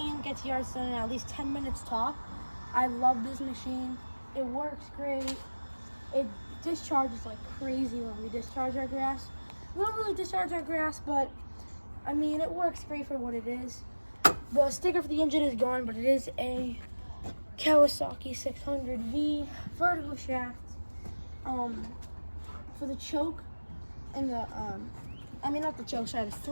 gets yards done in at least 10 minutes top. I love this machine. It works great. It discharges like crazy when we discharge our grass. We don't really discharge our grass, but I mean, it works great for what it is. The sticker for the engine is gone, but it is a Kawasaki 600V vertical shaft. For the choke and the, not the choke, sorry, the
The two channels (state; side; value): inverted; both; correlation -1.00